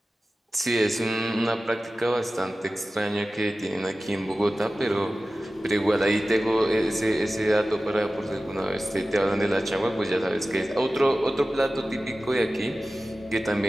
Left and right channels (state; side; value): normal; both; correlation 0.96